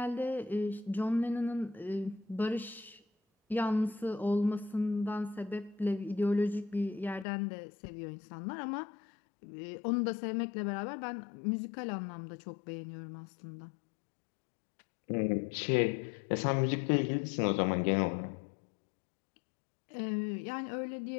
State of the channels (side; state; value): right; drops out; at 7.2 s